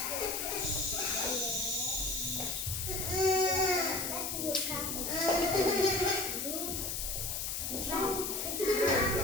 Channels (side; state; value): left; noise; hiss, 2 dB below the sound